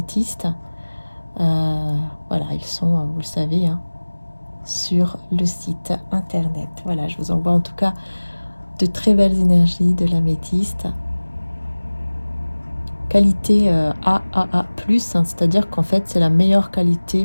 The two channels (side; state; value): both; inverted; correlation -1.00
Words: Voilà, ils sont, vous le savez, sur le site internet. Voilà, je vous envoie en tout cas de très belles énergies de l'améthyste. Qualité AAA+, hein, c'est-à-dire qu'en fait, c'est la meilleure